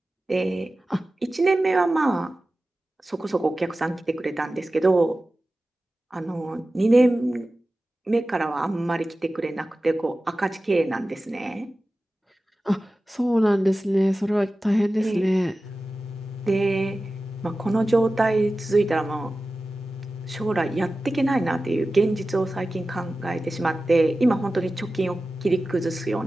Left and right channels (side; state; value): both; normal; correlation 0.95